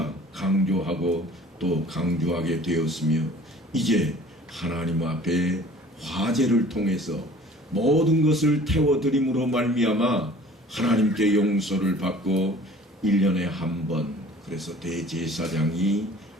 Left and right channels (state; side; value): normal; both; correlation 0.48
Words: 강조하고 또 강조하게 되었으며, 이제 하나님 앞에 화제를 통해서 모든 것을 태워드림으로 말미암아 하나님께 용서를 받고 1년에 한 번, 그래서 대제사장이